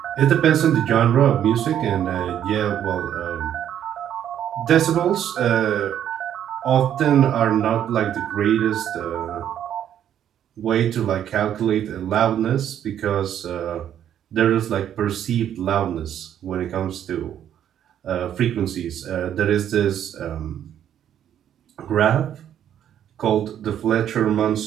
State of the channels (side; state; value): left; quieter; 10.1 dB